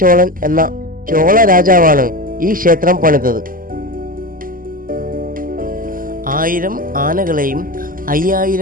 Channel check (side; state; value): left; late; 0.41 ms